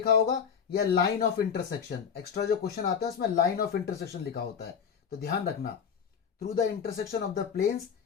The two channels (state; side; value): quieter; right; 7.1 dB